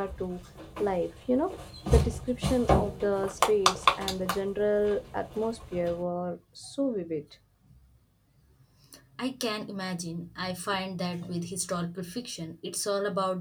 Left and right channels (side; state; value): both; identical; correlation 1.00